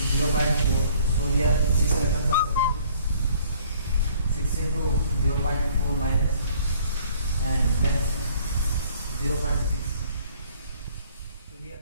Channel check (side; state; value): both; inverted; correlation -0.57